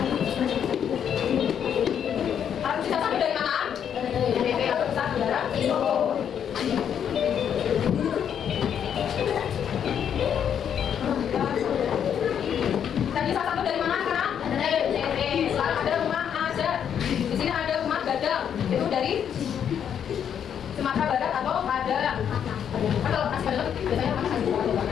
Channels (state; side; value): quieter; right; 8.6 dB